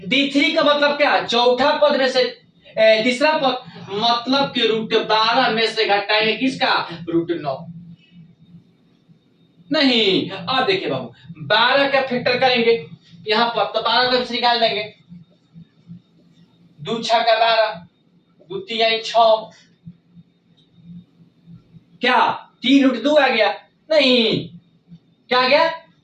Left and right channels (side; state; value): both; identical; correlation 1.00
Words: D3 का मतलब क्या, चौथा पद में से तीसरा पद, मतलब कि √12 में से घटाएंगे किसका, √9, नहीं। अब देखिए बाबू 12 का फैक्टर करेंगे यहाँ पर, तो 12 का निकाल देंगे, 2 6 का 12, 2 3 6, क्या 3 √2 आ गया, नहीं। क्या आ गया,